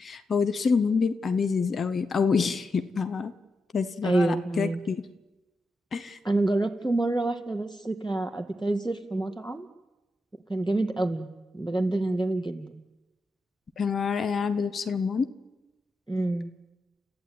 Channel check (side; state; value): both; normal; correlation 0.87